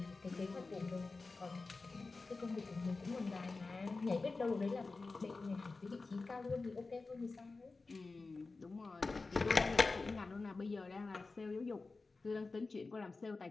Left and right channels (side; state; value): right; quieter; 3.8 dB